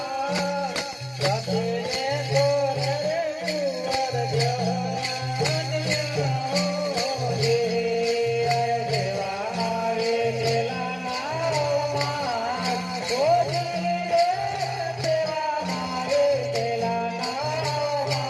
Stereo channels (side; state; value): both; identical; correlation 1.00